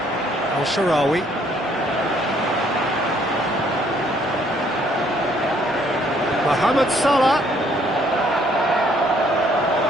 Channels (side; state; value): both; normal; correlation 0.65